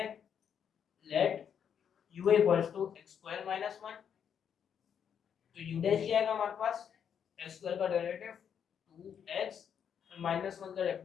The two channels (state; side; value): quieter; right; 8.0 dB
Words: let u equals to x square minus 1, तो u डैश क्या आएगा हमारे पास x स्क्वायर का डेरिवेटिव 2x और माइनस 1 का